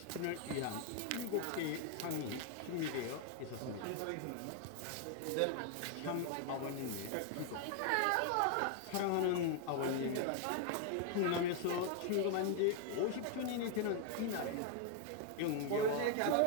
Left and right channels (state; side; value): different; both; correlation 0.00